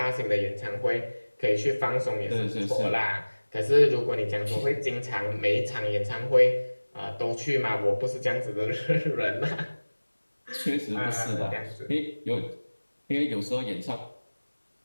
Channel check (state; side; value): inverted; both; correlation -1.00